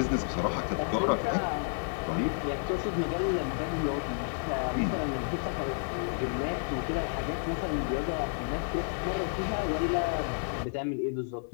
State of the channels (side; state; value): right; silent; 57 dB below the other